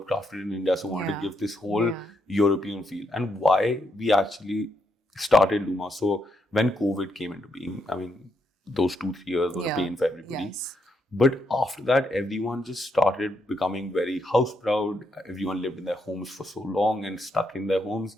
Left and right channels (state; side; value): normal; both; correlation 0.78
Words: crafted in India. So I wanted to give this whole European feel. And why we actually started LumeHaus. So when COVID came into being, I mean, those 2-3 years were a pain for everybody. Yes. But after that, everyone just started becoming very house proud. Everyone lived in their homes for so long and stuck in their homes.